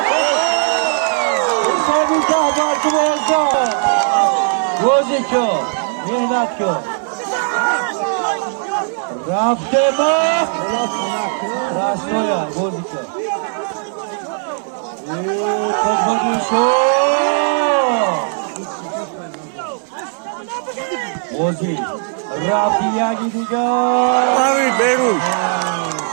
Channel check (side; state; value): left; silent; 57 dB below the other